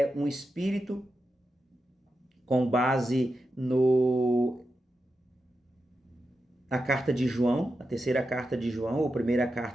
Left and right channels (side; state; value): both; normal; correlation 0.89